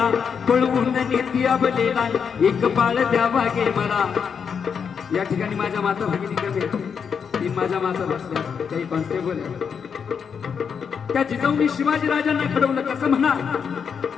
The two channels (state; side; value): quieter; right; 6.7 dB